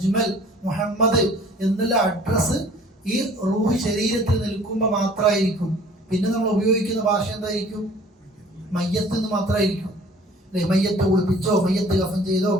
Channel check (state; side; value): normal; both; correlation 0.51